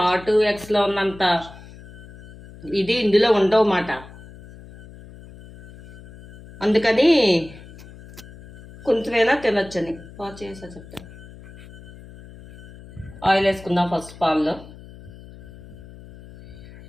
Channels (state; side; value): noise; left; hum, 18 dB below the sound